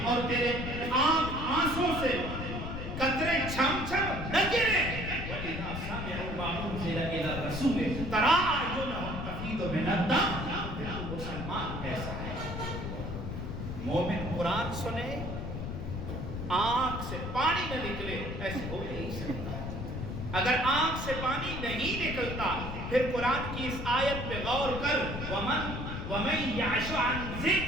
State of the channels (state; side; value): noise; left; rumble, 5 dB below the sound